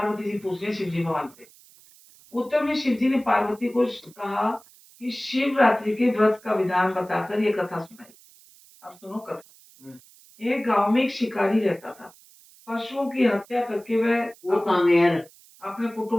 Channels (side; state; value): right; noise; hiss, 25 dB below the sound